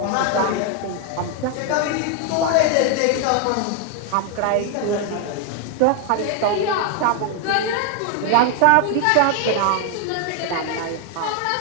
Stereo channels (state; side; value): different; both; correlation 0.00